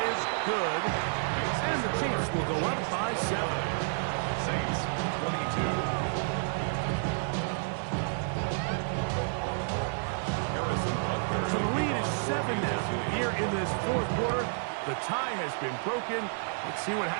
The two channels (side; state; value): left; silent; digital silence